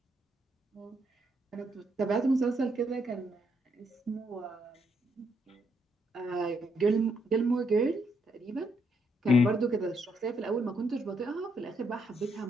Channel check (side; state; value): both; normal; correlation 0.75